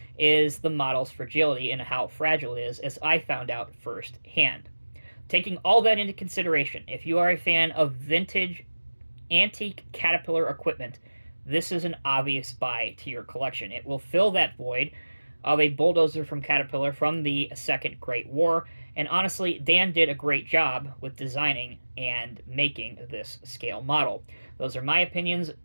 is the model's fragility and how fragile it is, as I found out firsthand. Taking all that into consideration, if you are a fan of vintage, antique Caterpillar equipment, this is an obvious buy to your collection. It will fill that void of a bulldozer from Caterpillar from the Second Great War, and honestly, Dan did a great job with designing and making this scale model. Those are my opinions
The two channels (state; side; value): inverted; both; correlation -1.00